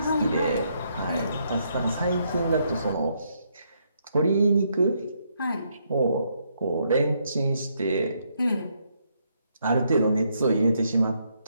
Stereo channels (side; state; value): both; inverted; correlation -0.75